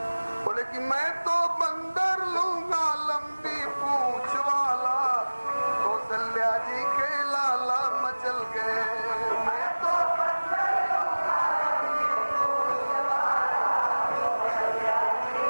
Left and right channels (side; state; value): both; inverted; correlation -1.00